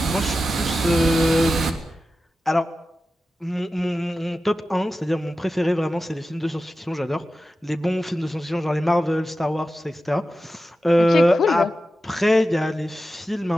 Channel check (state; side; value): normal; both; correlation 0.93